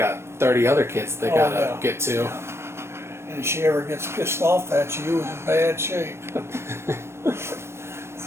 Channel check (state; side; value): late; left; 0.12 ms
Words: 30 other kids they gotta get to. And if she ever gets pissed off at you, it's in bad shape.